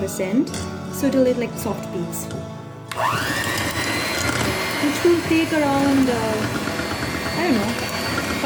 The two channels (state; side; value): identical; both; correlation 1.00